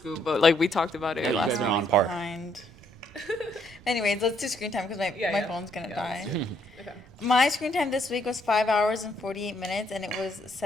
but like we talked about it Yeah, you last guys week. are on par. Behind. Anyways, let's do screen time because my Yeah, yeah. phone's gonna Yeah, die. let's do it. Okay. My screen time this week was 5 hours and 48 minutes, and it was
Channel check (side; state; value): right; noise; rumble, 23 dB below the sound